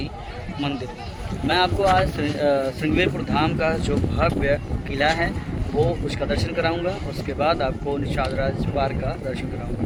मंदिर। मैं आपको आज श्रृंगेरपुर धाम का जो भव्य किला है वो उसका दर्शन कराऊंगा। उसके बाद आपको निषाद राज पार्क का दर्शन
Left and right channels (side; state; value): both; identical; correlation 1.00